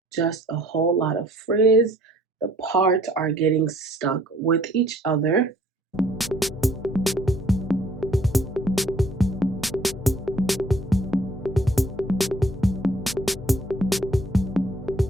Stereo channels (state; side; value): normal; both; correlation 0.59